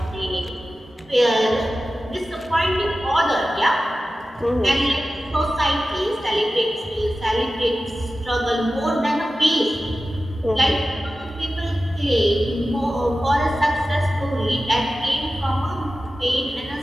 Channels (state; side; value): normal; both; correlation 0.94